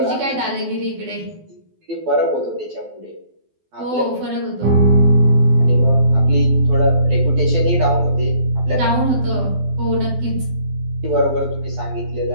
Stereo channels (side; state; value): left; late; 12 ms